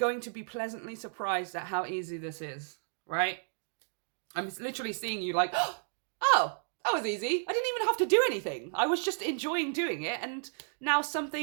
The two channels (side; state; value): left; silent; digital silence